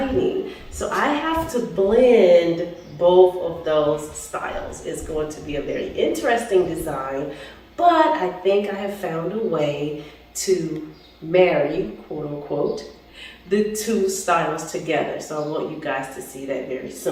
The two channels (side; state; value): both; identical; correlation 1.00